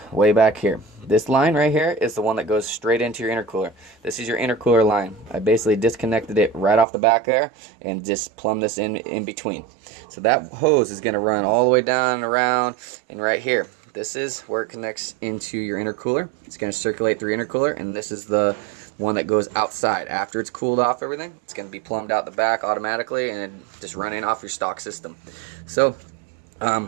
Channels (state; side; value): drops out; left; at 6.9 s